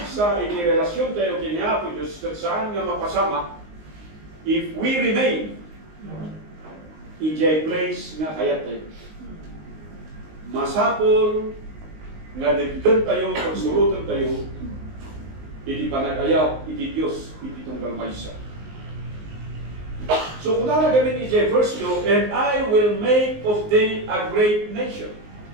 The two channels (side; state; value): left; late; 19 ms